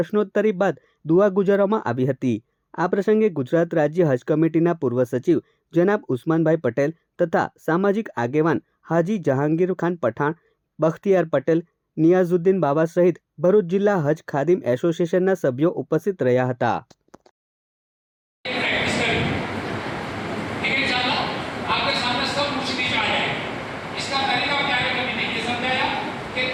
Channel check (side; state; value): both; identical; correlation 1.00